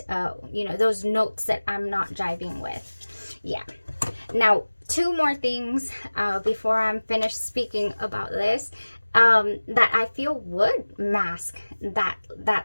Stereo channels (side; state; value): both; inverted; correlation -1.00